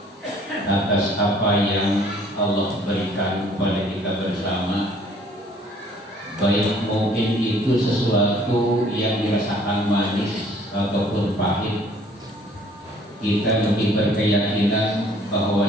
atas apa yang Allah berikan kepada kita bersama. Baik mungkin itu sesuatu yang dirasakan manis ataupun pahit, kita lebih berkeyakinan bahwa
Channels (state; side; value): normal; both; correlation 0.58